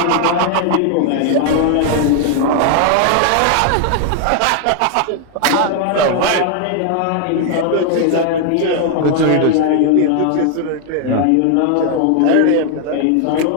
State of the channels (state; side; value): different; both; correlation 0.00